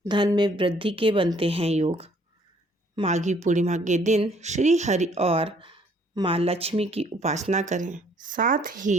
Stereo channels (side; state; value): both; normal; correlation 0.62